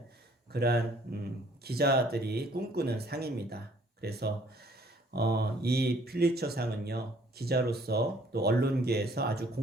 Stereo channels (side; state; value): both; normal; correlation 0.60